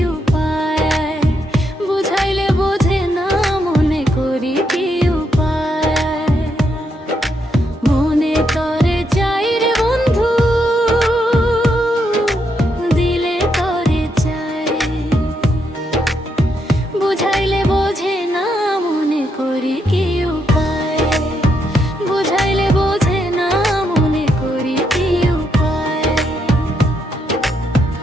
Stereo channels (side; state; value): both; normal; correlation 0.79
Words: উপায়। বুঝাইলে বোঝে না, মনে করি কি উপায়। মনে তরে চাই রে বন্ধু, দিলে তরে চাই। বুঝাইলে বোঝে না, মনে করি কি উপায়। বুঝাইলে বোঝে না, মনে করি কি উপায়।